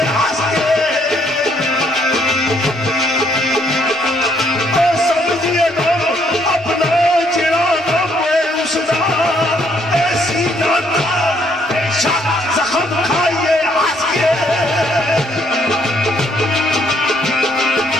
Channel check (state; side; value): normal; both; correlation 0.69